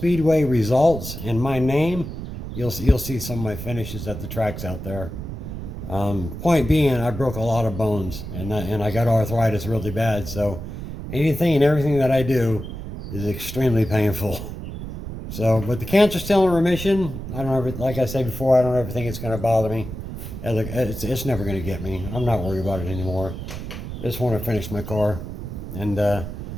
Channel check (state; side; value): noise; right; rumble, 8 dB below the sound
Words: results and my name, you'll see some of my finishes at the tracks out there. Point being, I broke a lot of bones, and I got arthritis really bad. So anything and everything that I do is extremely painful. So, but the cancer's still in remission. I don't ever, like I said before, I don't ever think it's going to bother me. It's never going to get me. I'm not worried about it anymore. I just want to finish my car. And